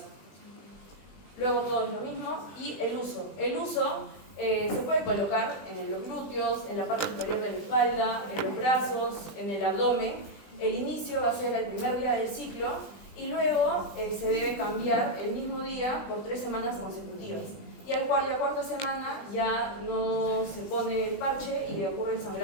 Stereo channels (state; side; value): late; right; 20 ms